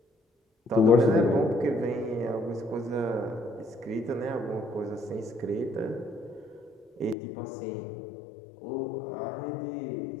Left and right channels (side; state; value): right; drops out; at 7.2 s